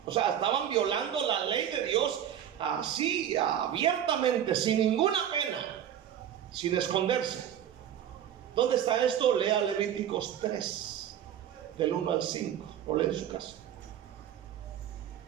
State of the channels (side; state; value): left; quieter; 10.0 dB